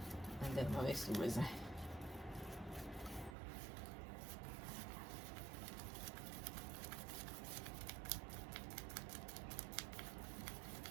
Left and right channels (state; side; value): drops out; left; at 3.4 s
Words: And then I'll mix the resin.